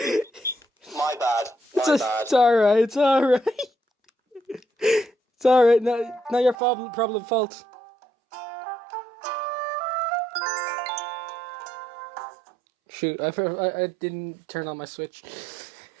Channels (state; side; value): drops out; left; at 6.6 s